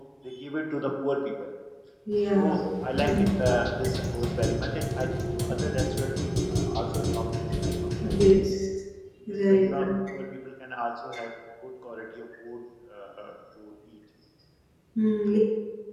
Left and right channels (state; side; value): identical; both; correlation 1.00